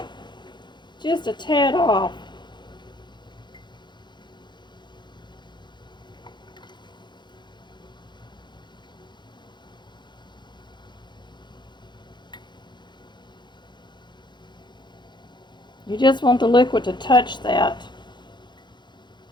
off. You just want the liquid to touch that.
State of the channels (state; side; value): late; right; 0.22 ms